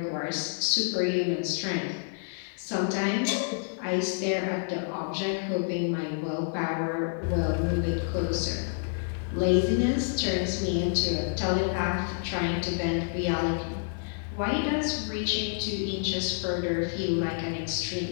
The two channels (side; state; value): right; silent; digital silence